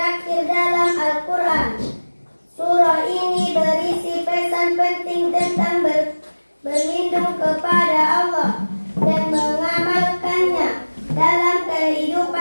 dalam Al-Quran. Surah ini berisi pesan penting tentang berlindung kepada Allah dan mengamalkannya dalam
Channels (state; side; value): inverted; both; correlation -1.00